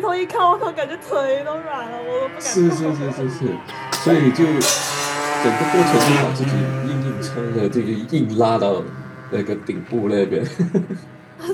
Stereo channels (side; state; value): both; identical; correlation 1.00